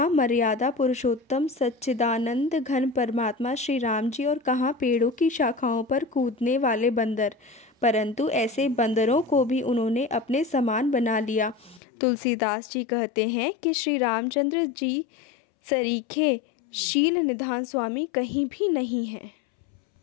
मर्यादा पुरुषोत्तम सच्चिदानंद घन परमात्मा श्री राम जी और कहाँ पेड़ों की शाखाओं पर कूदने वाले बंदर, परंतु ऐसे बंदरों को भी उन्होंने अपने समान बना लिया। तुलसीदास जी कहते हैं कि श्री रामचंद्र जी सरीखे शील निधान स्वामी कहीं भी नहीं है।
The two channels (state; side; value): drops out; right; at 11.8 s